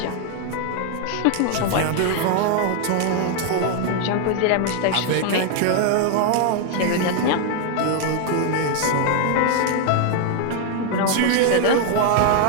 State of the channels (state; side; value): different; both; correlation 0.00